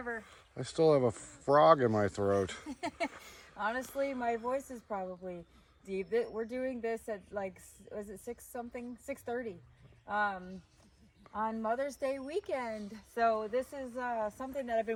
I still have a frog in my throat. Honestly, my voice is probably deep. We're doing this at like, was it 6 something? 6:30 on Mother's Day weekend. So this is something that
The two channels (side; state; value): both; identical; correlation 1.00